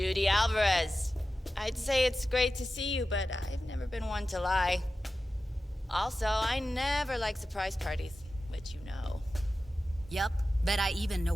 Alvarez. I'd say it's great to see you, but I've never been one to lie. Also, I never like surprise parties, which you know. Yup, bet I even know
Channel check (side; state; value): both; normal; correlation 0.94